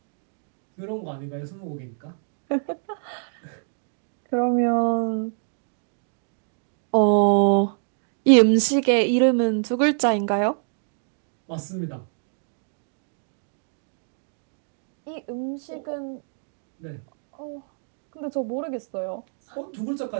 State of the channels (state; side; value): silent; left; digital silence